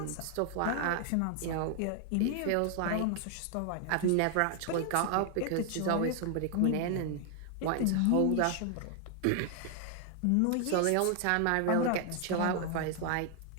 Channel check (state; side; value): different; both; correlation 0.00